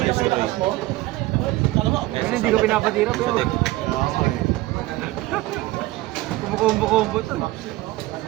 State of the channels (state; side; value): quieter; left; 18.4 dB